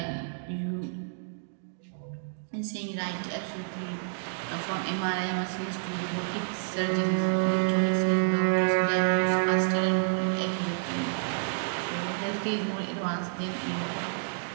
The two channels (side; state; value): left; silent; digital silence